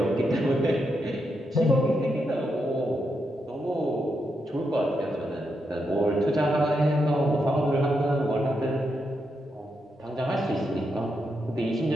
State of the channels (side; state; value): both; normal; correlation 0.83